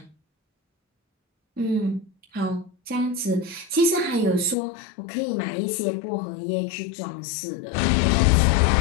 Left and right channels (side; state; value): right; drops out; at 4.5 s